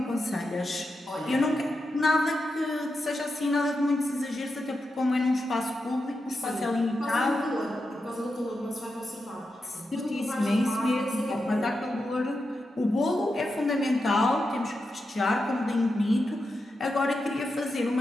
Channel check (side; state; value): both; normal; correlation 0.88